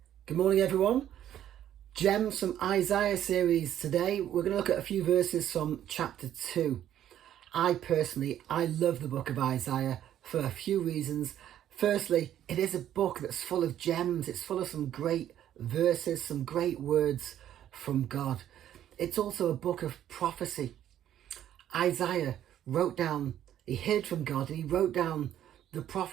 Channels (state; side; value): quieter; left; 11.1 dB